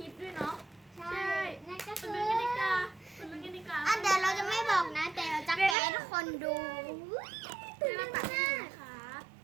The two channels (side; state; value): left; drops out; at 5.8 s